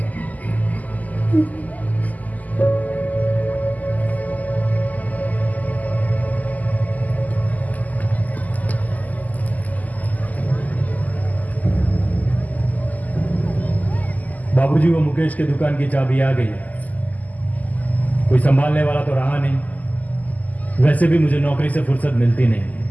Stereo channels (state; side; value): late; right; 0.078 ms